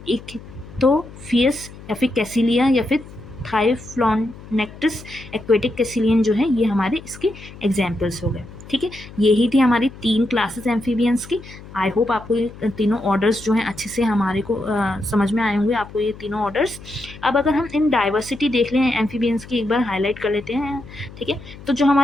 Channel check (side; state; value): left; noise; hum, 17 dB below the sound